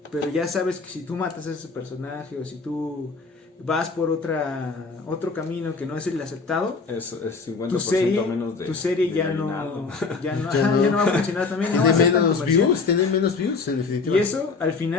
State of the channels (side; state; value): right; quieter; 4.4 dB